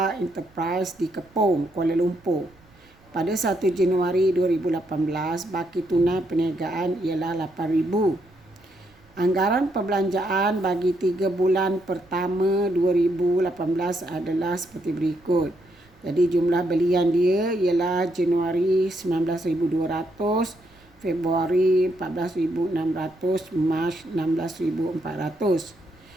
Enterprise di Kepong, Kuala Lumpur. Pada 1 Januari 2018, baki tunai perniagaan ialah 8,000. Anggaran perbelanjaan bagi 3 bulan pertama 2018 adalah seperti berikut. Jadi jumlah belian dia ialah Januari 19,200, Februari 14,600, Mac 16,400.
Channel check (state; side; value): noise; right; rumble, 29 dB below the sound